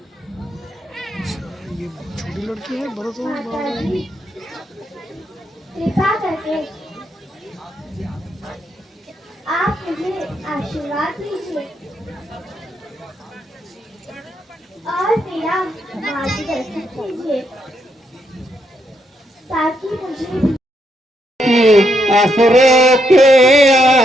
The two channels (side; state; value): both; normal; correlation 0.78